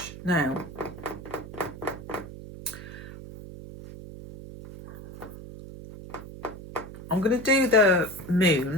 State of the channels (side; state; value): right; noise; hum, 13 dB below the sound